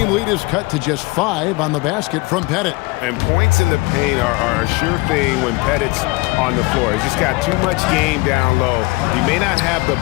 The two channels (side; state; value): right; quieter; 24.4 dB